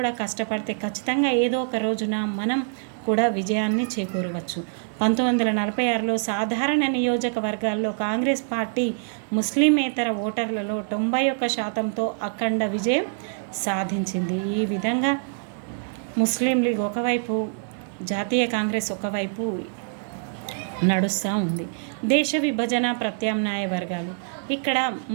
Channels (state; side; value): silent; left; digital silence